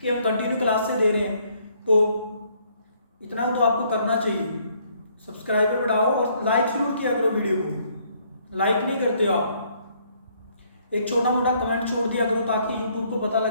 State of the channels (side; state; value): both; inverted; correlation -0.67